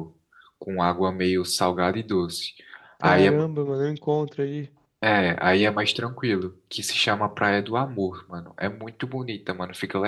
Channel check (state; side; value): identical; both; correlation 1.00